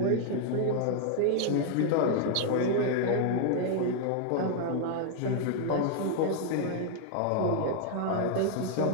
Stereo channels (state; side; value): different; both; correlation 0.00